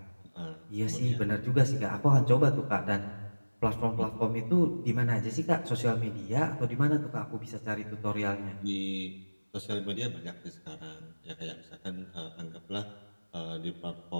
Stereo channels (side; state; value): both; inverted; correlation -1.00